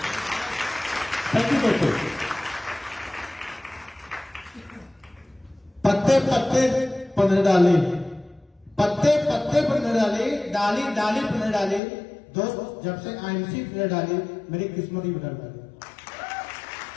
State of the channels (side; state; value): right; drops out; at 11.8 s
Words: थैंक यू दोस्तों। पत्ते पत्ते पन्ने डाले, पत्ते पत्ते पन्ने डाले, डाली डाली पन्ने डाले। दोस्त जब से आईएमसी पन्ने डाली, मेरी किस्मत ही बदल गई।